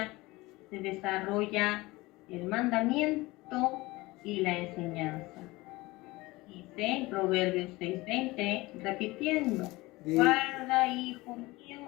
el mandamiento y la enseñanza. Dice en Proverbios 6:20, repitiendo, guarda, hijo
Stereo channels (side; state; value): right; quieter; 21.1 dB